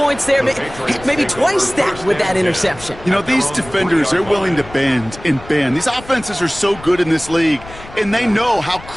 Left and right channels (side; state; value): left; noise; rumble, 17 dB below the sound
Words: there, maybe twice that with that interception. You know, these defenders, they're willing to bend and bend. These offenses are so good in this league, and they know how